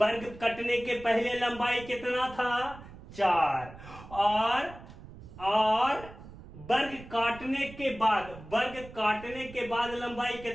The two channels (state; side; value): noise; right; rumble, 16 dB below the sound